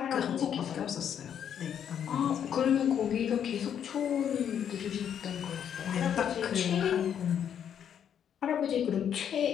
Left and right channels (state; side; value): quieter; right; 8.8 dB